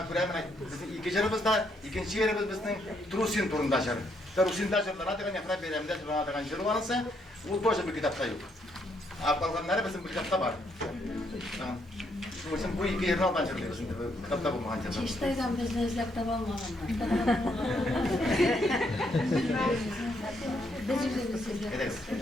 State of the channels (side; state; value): both; normal; correlation 0.74